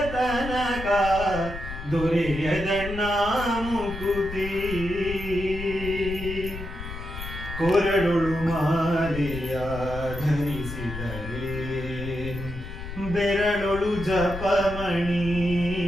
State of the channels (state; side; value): noise; left; rumble, 9 dB below the sound